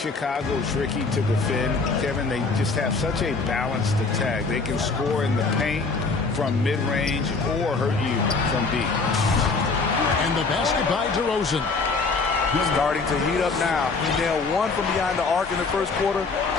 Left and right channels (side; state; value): right; quieter; 4.2 dB